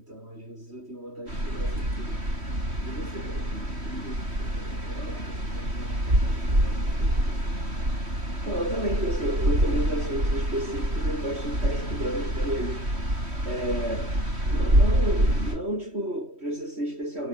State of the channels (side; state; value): left; late; 3.1 ms